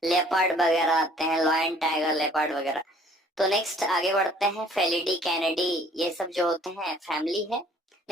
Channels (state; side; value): normal; both; correlation 0.56